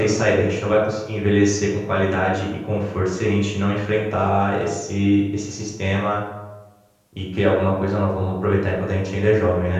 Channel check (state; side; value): identical; both; correlation 1.00